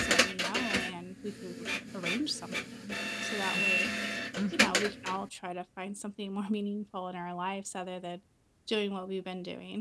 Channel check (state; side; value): identical; both; correlation 1.00